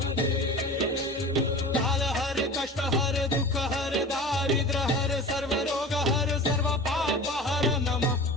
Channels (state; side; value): normal; both; correlation 0.36